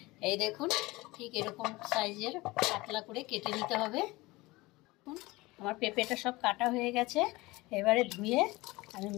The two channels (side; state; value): right; quieter; 21.3 dB